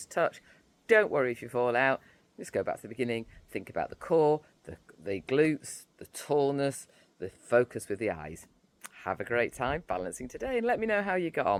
touch. Don't worry if you fall out. Just go back to the beginning. Think about the core, the glutes, the tallness, the focus with the eyes. Have a great time balancing today and let me know how you got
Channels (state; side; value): identical; both; correlation 1.00